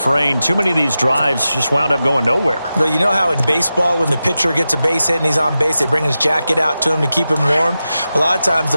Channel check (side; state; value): both; inverted; correlation -0.92